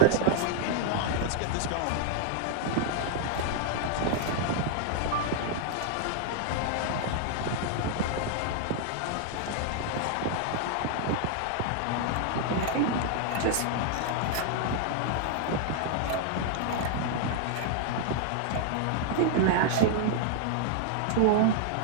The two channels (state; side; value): different; both; correlation -0.01